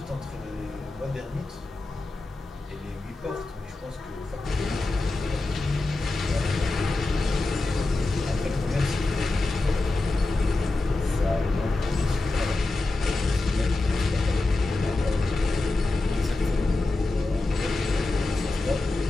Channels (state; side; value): quieter; right; 3.1 dB